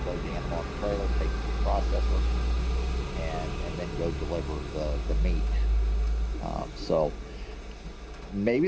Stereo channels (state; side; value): identical; both; correlation 1.00